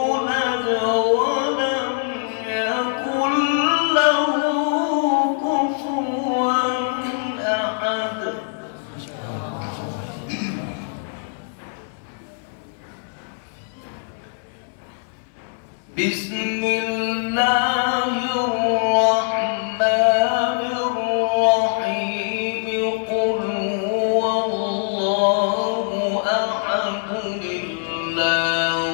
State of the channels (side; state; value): right; silent; digital silence